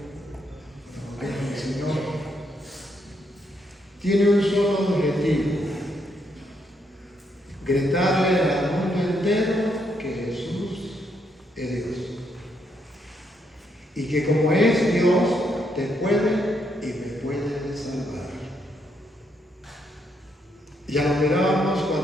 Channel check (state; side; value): normal; both; correlation 0.76